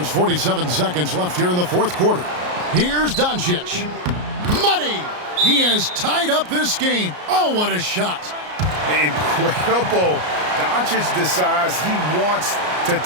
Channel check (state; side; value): late; left; 33 ms